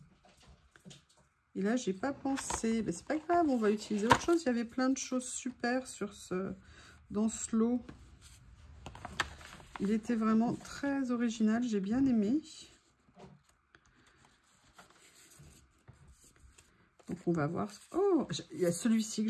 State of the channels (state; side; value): identical; both; correlation 1.00